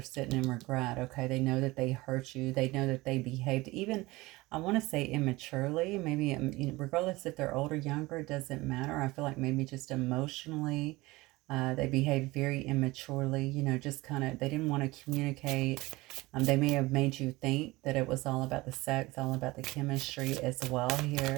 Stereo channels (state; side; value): quieter; left; 20.8 dB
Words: sitting in regret, okay? They know that they hurt you. They know that they behaved even, I want to say immaturely. Maybe, you know, regardless if they're older, younger, it doesn't matter. I feel like maybe just emotionally, they behaved very immaturely, you know, just kind of, they didn't want to communicate. They may have made you think that it was all about the sex, all about the chemistry as well